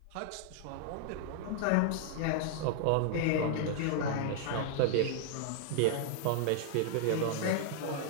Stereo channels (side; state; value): both; different; correlation 0.00